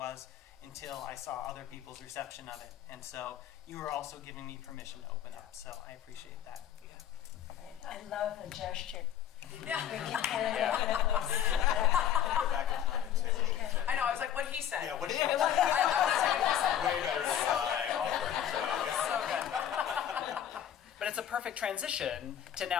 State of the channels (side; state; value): right; quieter; 10.1 dB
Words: until I saw other people's reception of it. And so you were also giving me permission to open up, so I appreciate that. I love the gesture. Yeah. Go back in time and say what she said. I know. I was like, what he said. Yeah, what she I said. want to say what he said. Way better than I offered. So good. But it's a perfect transition to